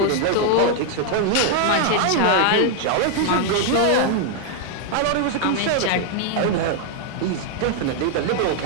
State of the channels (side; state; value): both; different; correlation 0.00